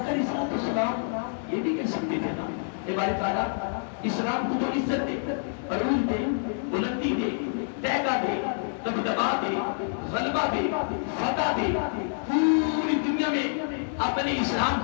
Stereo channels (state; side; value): silent; right; 60 dB below the other